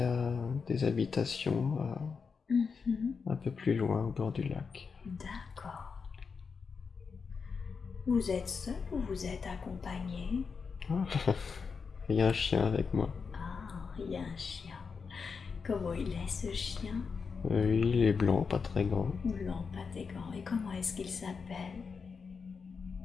y a des habitations un peu plus loin au bord du lac. D'accord. Vous êtes seul ou vous êtes accompagné? Il y a un chien avec moi. Ah, il y a un chien. Comment il est ce chien? Il est blanc, pas très grand. Blanc, patégan. Et comment est-ce qu'il s'appelle?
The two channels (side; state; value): right; quieter; 5.4 dB